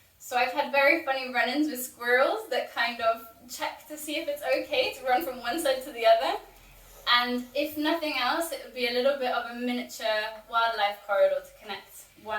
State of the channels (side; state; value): both; identical; correlation 1.00